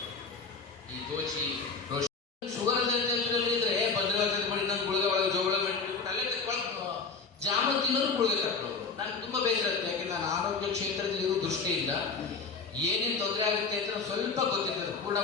ಈ ದೋಚಿ ಶುಗರ್ ಇದ್ರೆ ಭದ್ರವಾಗಿ ಮಾಡಿ ಇನ್ನೊಂದು ಗುಳಿಗೆ ಒಳಗೆ ಜೋಳ ಬಿಟ್ಬಿಟ್ಟು ಅಲ್ಲೇ ಜಾಮೂನ್ ತಿನ್ನೋರು ಗುಳಿಗೆ ತಕ್ಕೊಳ್ಳೋರು. ನನ್ಗೆ ತುಂಬಾ ಬೇಸರ ಇರುತ್ತೆ. ಯಾಕೆಂದ್ರೆ ನಾನು ಆರೋಗ್ಯ ಕ್ಷೇತ್ರದಲ್ಲಿ ಇರೋ ದೃಷ್ಟಿಯಿಂದ ಏನೇನು ತೊಂದರೆ ಆಗುತ್ತೆ ಅಂತ ಸ್ವಲ್ಪ ಗೊತ್ತಿರ್ತದೆ, ಪೂರ್ಣ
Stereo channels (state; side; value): quieter; right; 4.8 dB